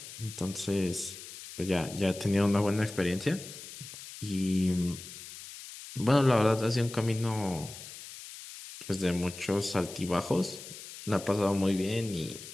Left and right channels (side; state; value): left; noise; hiss, 13 dB below the sound